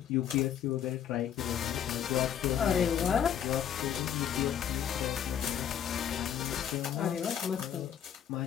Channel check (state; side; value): quieter; right; 9.3 dB